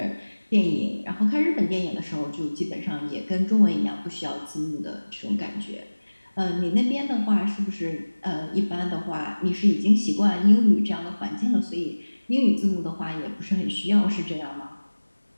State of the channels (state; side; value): inverted; both; correlation -1.00